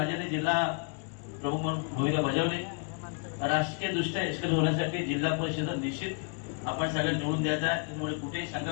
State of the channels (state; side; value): quieter; right; 38.6 dB